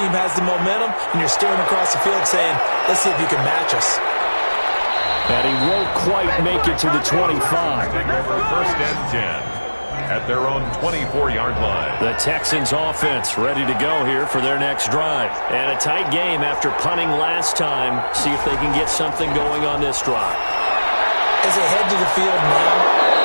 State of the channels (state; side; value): inverted; both; correlation -1.00